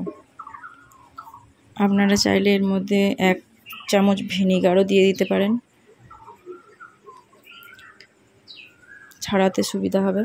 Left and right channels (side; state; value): both; identical; correlation 1.00